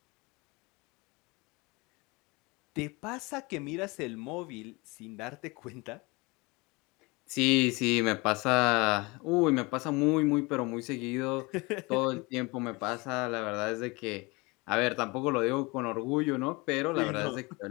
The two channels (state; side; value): quieter; right; 25.7 dB